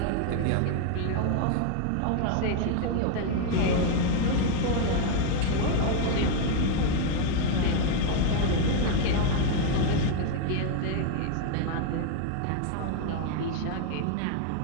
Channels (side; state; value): both; different; correlation 0.00